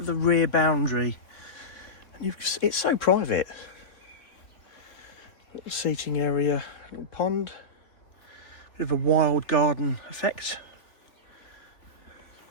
the rear boundary. And it's so private. Little seating area, little pond. Bit of a wild garden effect.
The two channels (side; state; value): right; late; 3.6 ms